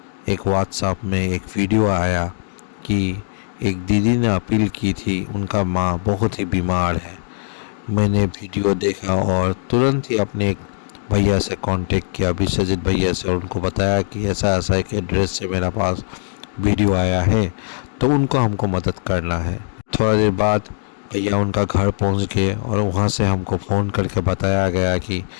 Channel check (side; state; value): right; silent; digital silence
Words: एक व्हाट्सएप में एक वीडियो आया कि एक दीदी ने अपील की थी, उनका माँ बहुत ही बीमार है। मैंने वीडियो देखा और तुरंत ही अपने एक भैया से कांटेक्ट किया, विश्वजीत भैया से, और उनको बताया कि ऐसा ऐसा एक एड्रेस से मेरा पास वीडियो आया है, तो उनको हमको मदद करना है। थोड़ा देर बाद भैया उनका घर पहुंच गए और वहां से हमको फ़ोन करके बताया गया कि